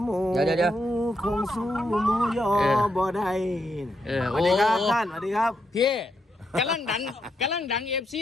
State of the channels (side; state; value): both; normal; correlation 0.81